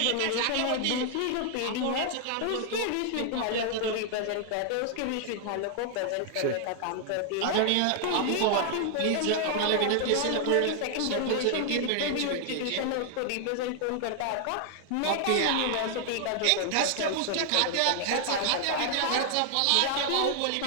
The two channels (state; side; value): different; both; correlation 0.00